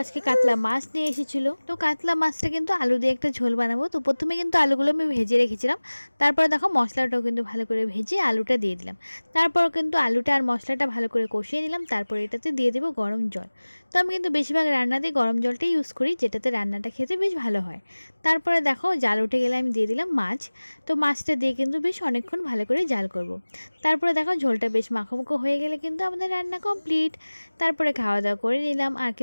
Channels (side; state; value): both; inverted; correlation -1.00